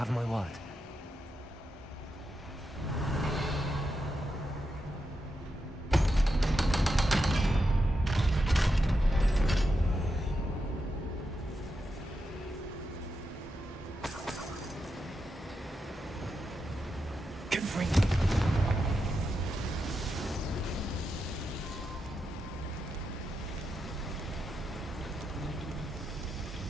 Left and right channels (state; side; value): normal; both; correlation 0.86